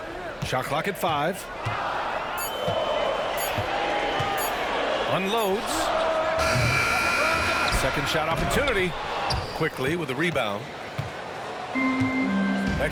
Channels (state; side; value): identical; both; correlation 1.00